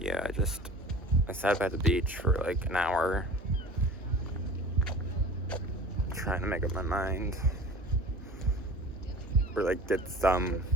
I sat by the beach for like an hour, trying to make up my mind, or like get some.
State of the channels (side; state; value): both; normal; correlation 0.41